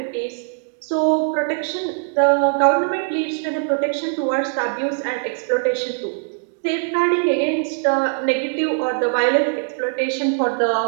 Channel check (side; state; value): left; silent; digital silence